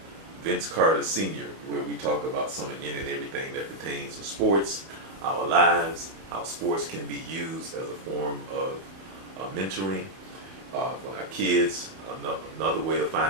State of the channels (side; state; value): left; late; 31 ms